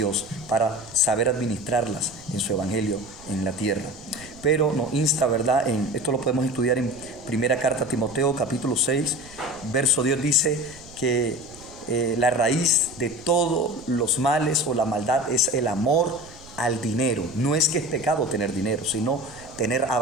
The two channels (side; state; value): right; noise; rumble, 22 dB below the sound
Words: para saber administrarlas en su evangelio en la tierra. Pero nos insta, ¿verdad? Esto lo podemos estudiar en primera carta a Timoteo, capítulo 6, verso 10, dice que la raíz de todos los males o la maldad es el amor al dinero. No es que es pecado tener dinero, sino tener